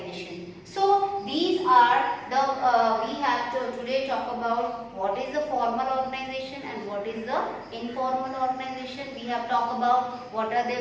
So these are the we have to today talk about what is the formal organization and what is the informal organization. We have talked about what are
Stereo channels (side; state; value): both; identical; correlation 1.00